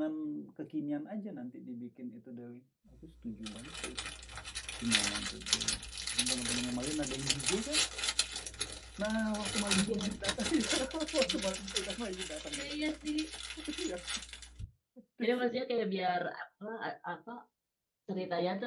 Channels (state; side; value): identical; both; correlation 1.00